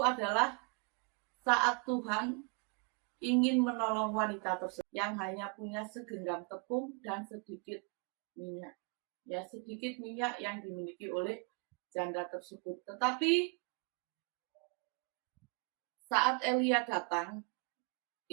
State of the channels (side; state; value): left; quieter; 34.4 dB